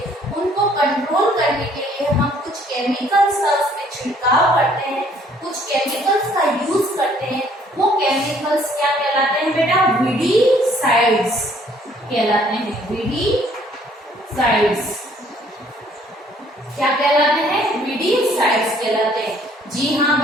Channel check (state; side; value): normal; both; correlation 0.61